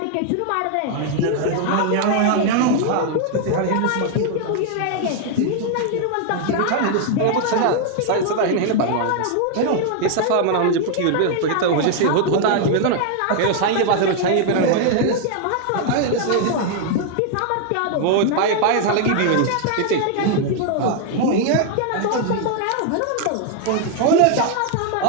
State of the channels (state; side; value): different; both; correlation 0.00